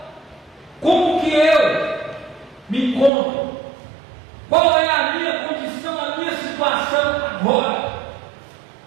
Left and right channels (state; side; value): drops out; left; at 3.1 s